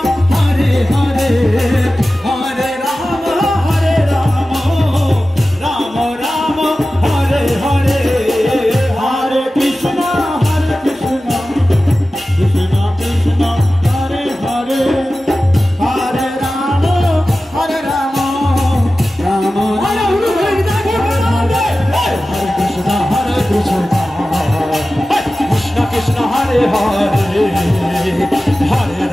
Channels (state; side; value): normal; both; correlation 0.95